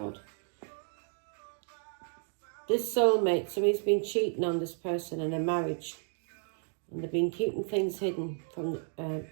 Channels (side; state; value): left; silent; 56 dB below the other